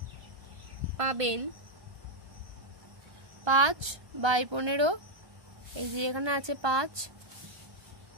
5/15, এই যে এখানে আছে 5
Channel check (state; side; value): late; left; 1.3 ms